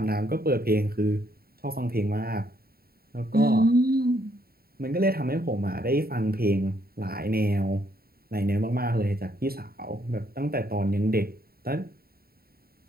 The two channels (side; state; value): left; late; 0.44 ms